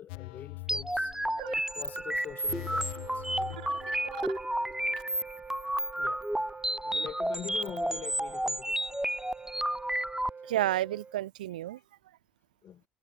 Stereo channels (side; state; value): both; normal; correlation 0.60